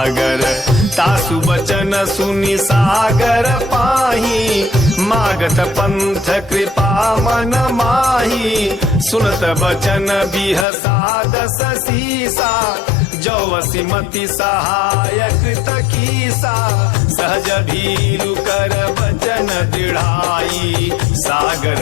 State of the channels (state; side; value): drops out; right; at 10.7 s